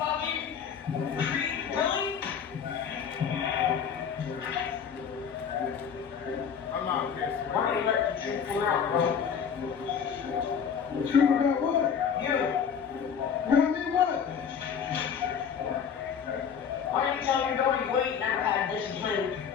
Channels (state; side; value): quieter; right; 7.2 dB